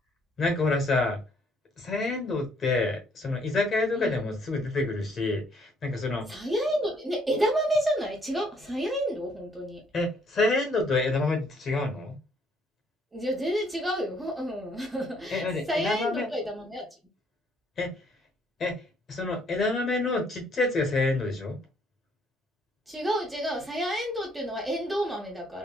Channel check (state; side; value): normal; both; correlation 0.66